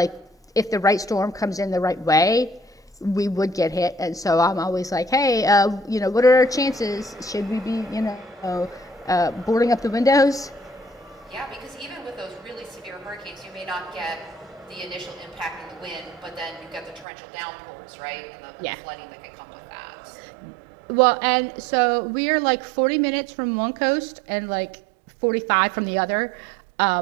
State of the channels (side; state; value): left; drops out; at 17.1 s